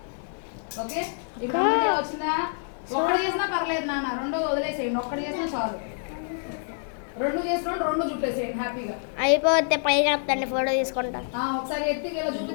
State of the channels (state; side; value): silent; right; 59 dB below the other